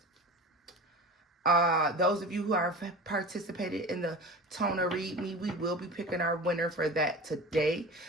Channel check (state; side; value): normal; both; correlation 0.34